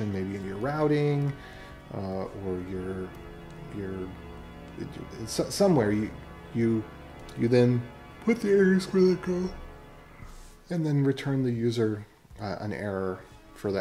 maybe in your routing, or somewhere you then put the errors where they go, and then return the user an error for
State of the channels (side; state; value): both; identical; correlation 1.00